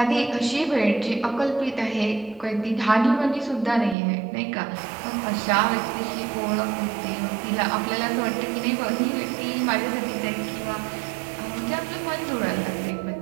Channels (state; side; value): drops out; left; at 4.0 s